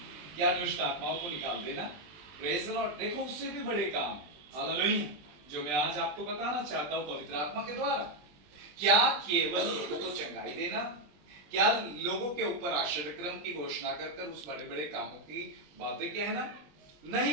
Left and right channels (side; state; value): left; late; 20 ms